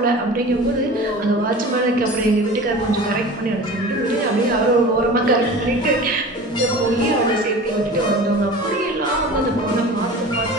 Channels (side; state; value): both; normal; correlation 0.37